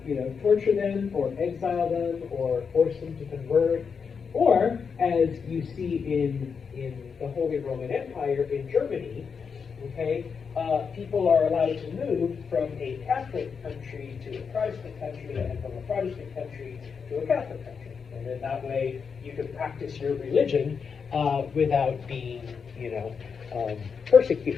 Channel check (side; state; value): right; quieter; 6.0 dB